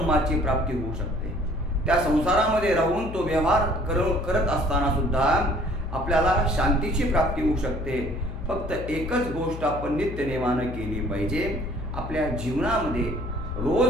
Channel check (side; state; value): left; noise; hum, 9 dB below the sound